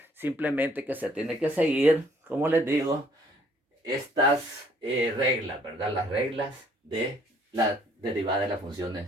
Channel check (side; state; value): both; normal; correlation 0.62